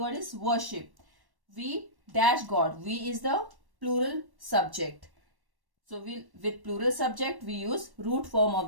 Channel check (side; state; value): left; late; 1.1 ms